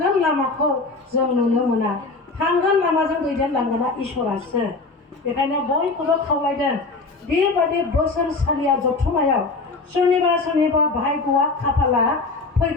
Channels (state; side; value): quieter; right; 3.7 dB